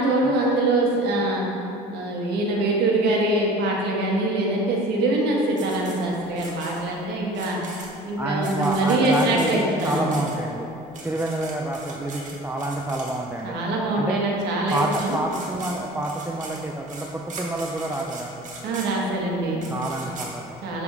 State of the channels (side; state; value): both; normal; correlation 0.43